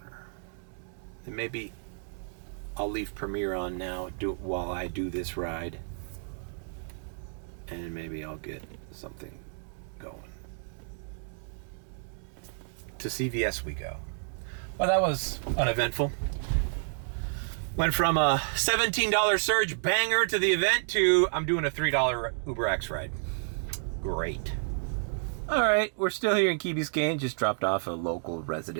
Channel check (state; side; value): silent; left; digital silence